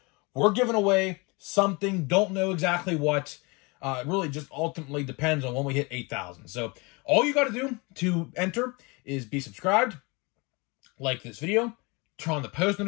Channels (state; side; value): quieter; right; 27.7 dB